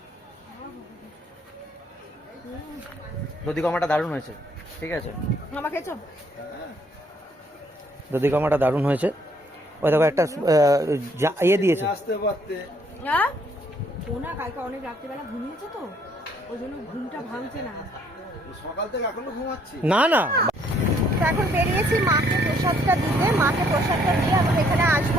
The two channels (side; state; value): both; normal; correlation 0.66